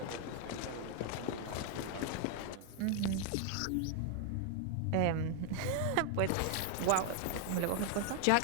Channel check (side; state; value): both; different; correlation 0.00